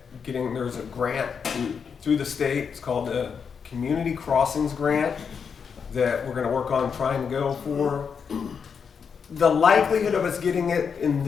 there's a grant through the state. It's called the Community Crossings Grant that we're going to work on trying to go for. The likelihood of us getting it in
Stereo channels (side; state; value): right; quieter; 6.4 dB